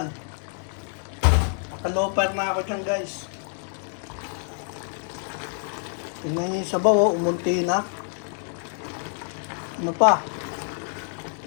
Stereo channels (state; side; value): silent; right; 56 dB below the other